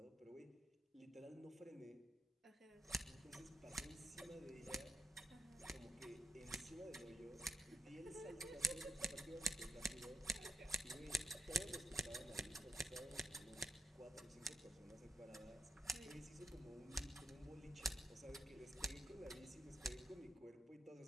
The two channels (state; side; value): normal; both; correlation 0.80